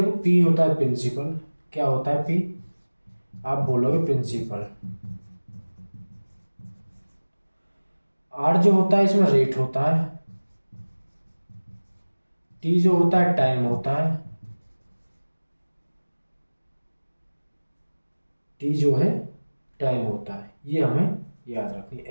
पी होता है प्रिंसिपल। क्या होता है पी? आप बोलोगे प्रिंसिपल। आर जो होता है इसमें रेट होता है। टी जो होता है टाइम होता है। टी जो है टाइम होता है। ये हमें याद रखनी है।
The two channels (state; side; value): inverted; both; correlation -1.00